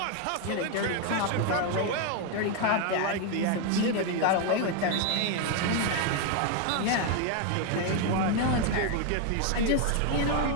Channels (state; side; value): different; both; correlation 0.01